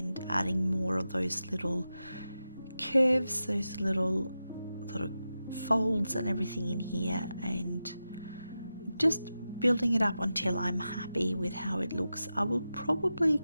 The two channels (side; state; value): both; inverted; correlation -0.92